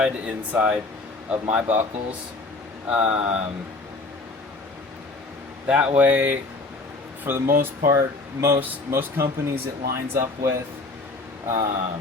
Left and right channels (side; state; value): right; quieter; 3.3 dB